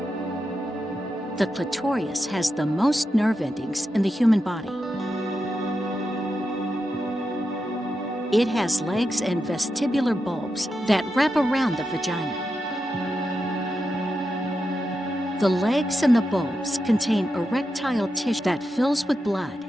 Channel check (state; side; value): normal; both; correlation 0.88